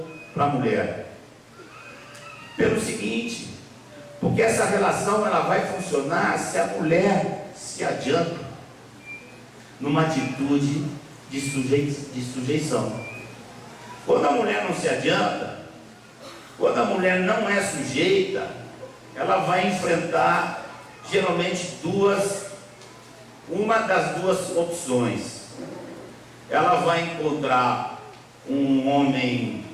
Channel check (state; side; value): identical; both; correlation 1.00